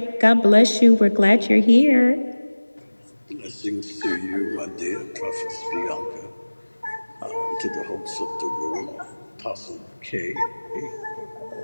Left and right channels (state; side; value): inverted; both; correlation -1.00